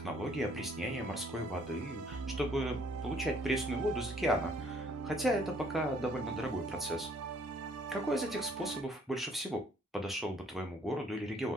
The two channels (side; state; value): both; normal; correlation 0.62